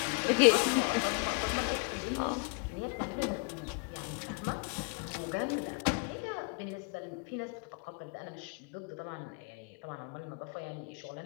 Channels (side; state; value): right; quieter; 34.7 dB